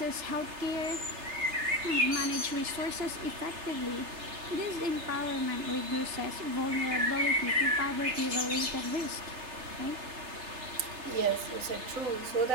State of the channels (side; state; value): left; late; 3.3 ms